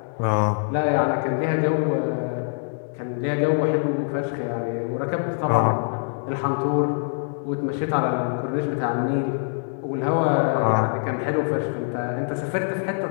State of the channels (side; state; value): right; silent; 62 dB below the other